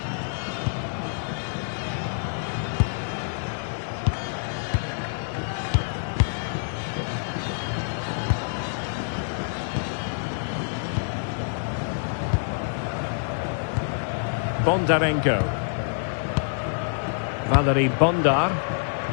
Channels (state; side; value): silent; right; digital silence